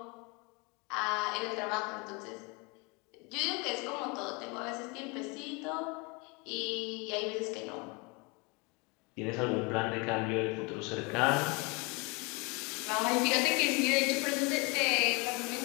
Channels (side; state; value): right; quieter; 29.2 dB